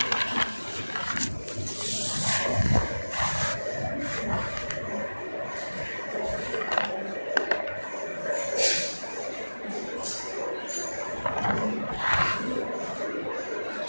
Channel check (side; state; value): both; inverted; correlation -1.00